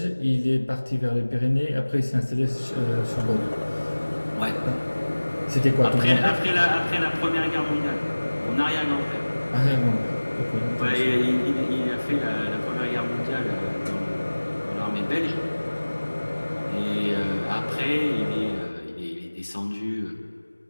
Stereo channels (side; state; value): both; inverted; correlation -1.00